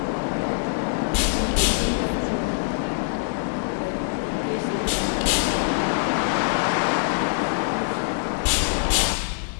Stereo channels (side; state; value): right; silent; 63 dB below the other